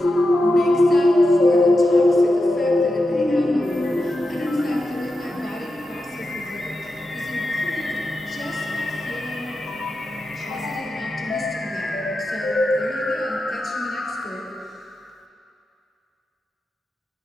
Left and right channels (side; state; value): both; normal; correlation 0.90